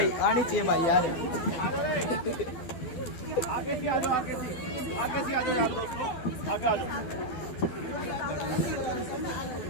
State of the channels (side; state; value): right; late; 12 ms